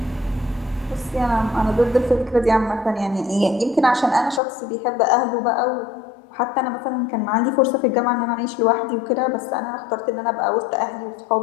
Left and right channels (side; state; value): right; drops out; at 4.4 s